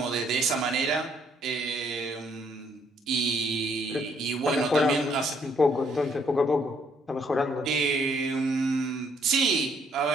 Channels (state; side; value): normal; both; correlation 0.68